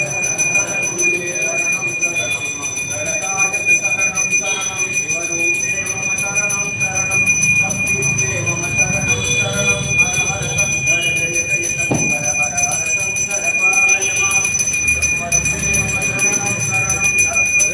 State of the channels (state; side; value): identical; both; correlation 1.00